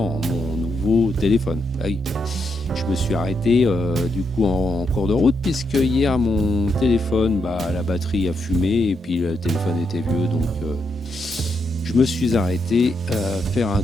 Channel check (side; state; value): both; normal; correlation 0.81